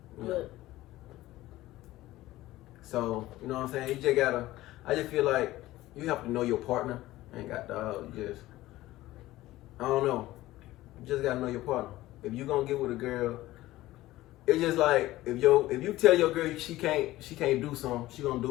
Yeah. But So you know what I'm saying. You just gotta. I just feel like you have to know your partner. Ain't got dog. Just I don't know. You just gotta know your partner. If you gonna get with a girl, it's just like if you tell your girl she can't do something, she gonna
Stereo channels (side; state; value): right; quieter; 16.6 dB